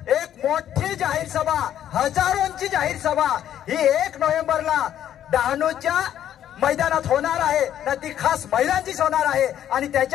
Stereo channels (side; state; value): right; quieter; 10.8 dB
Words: मोठी जाहीर सभा, हजारोंची जाहीर सभा ही 1 नोव्हेंबरला डहाणूच्या मैदानात होणार आहे ना, ती खास महिलांचीच होणार आहे आणि